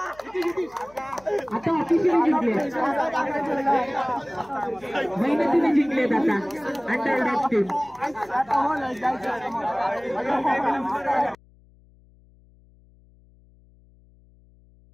आता ऑफिशियल जिंकले मेहनतीने जिंकलेत आता अंडरडॉग टीम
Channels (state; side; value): noise; left; hum, 28 dB below the sound